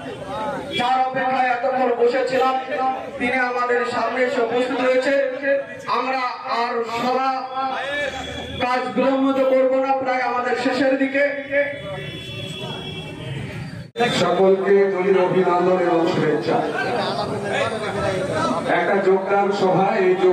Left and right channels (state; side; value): identical; both; correlation 1.00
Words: যার অপেক্ষায় এতক্ষণ বসেছিলাম তিনি আমাদের সামনে এসে উপস্থিত হয়েছে। আমরা আর সভা কাজ বিলম্বিত করব না, প্রায় আমাদের শেষের দিকে। সকলকে দলীয় অভিনন্দন এবং শুভেচ্ছা। একটা যোগদান সভা, এই